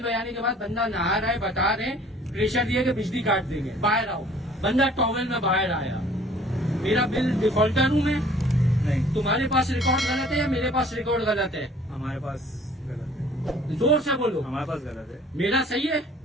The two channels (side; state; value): both; normal; correlation 0.54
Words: बजाने के बाद बंदा नहा रहा है, बता रहे हैं, प्रेशर दिया कि बिजली काट देंगे, बाहर आओ। बंदा टॉवेल में बाहर आया। मेरा बिल डिफॉल्टर हूँ मैं? नहीं, तुम्हारे पास रिकॉर्ड गलत है या मेरे पास रिकॉर्ड गलत है? हमारे पास गलत है। जोर से बोलो। हमारे पास गलत है। मेरा सही है?